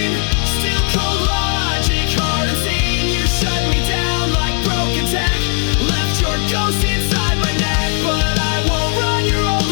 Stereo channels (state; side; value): quieter; right; 39.5 dB